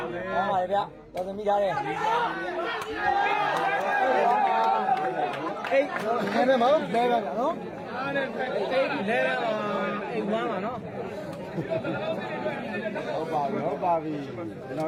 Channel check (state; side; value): identical; both; correlation 1.00